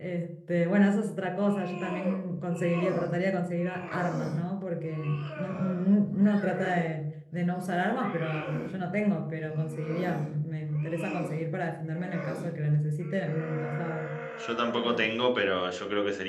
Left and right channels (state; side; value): identical; both; correlation 1.00